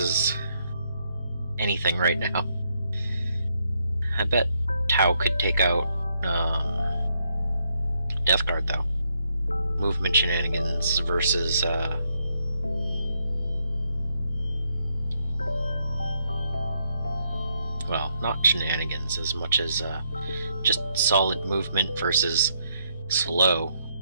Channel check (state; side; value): inverted; both; correlation -0.76